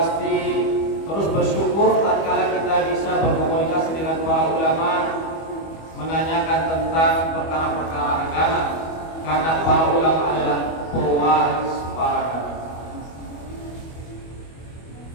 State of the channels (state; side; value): late; right; 25 ms